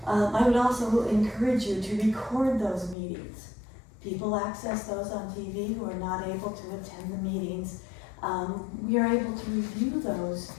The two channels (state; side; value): drops out; right; at 3.0 s